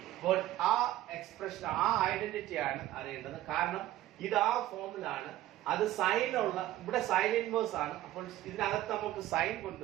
അപ്പോൾ ആ എക്സ്പ്രഷൻ, ആ ഐഡന്റിറ്റി ആണ് അറിയേണ്ടത്. കാരണം ഇത് ആ ഫോമിലാണ്, അത് സൈനുള്ള, ഇവിടെ സൈൻ ഇൻവേഴ്സ് ആണ്. അപ്പോൾ ഇതിനകത്ത് നമുക്ക് സൈൻ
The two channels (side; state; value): left; quieter; 14.6 dB